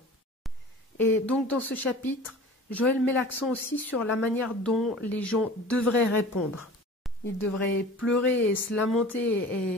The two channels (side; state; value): both; normal; correlation 0.41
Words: Et donc dans ce chapitre, Joël met l'accent aussi sur la manière dont les gens devraient répondre. Ils devraient pleurer et se